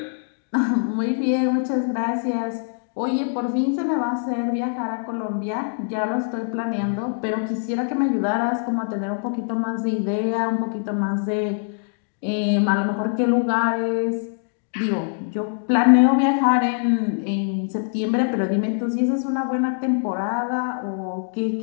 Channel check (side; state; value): right; silent; digital silence